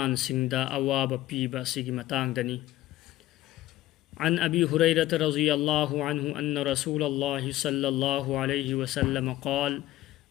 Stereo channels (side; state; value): right; quieter; 15.5 dB